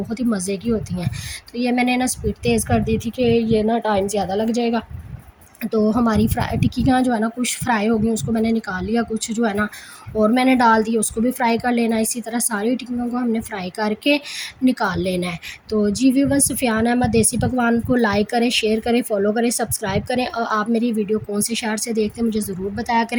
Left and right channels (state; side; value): identical; both; correlation 1.00